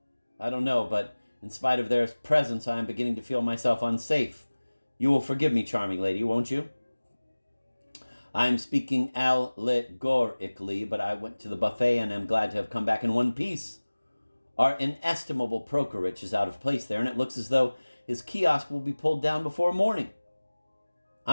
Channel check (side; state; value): both; inverted; correlation -1.00